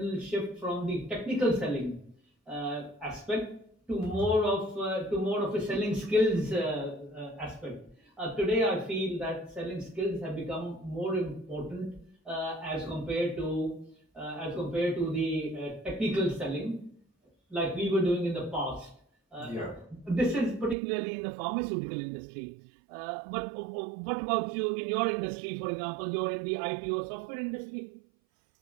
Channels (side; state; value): left; drops out; at 20.8 s